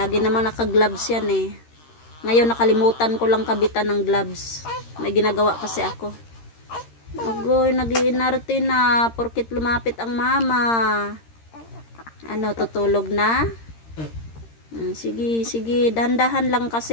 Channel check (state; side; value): late; right; 13 ms